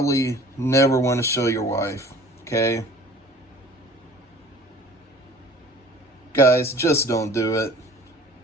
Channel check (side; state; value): both; normal; correlation 0.49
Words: never want to show your wife, okay? Guys, just don't do it.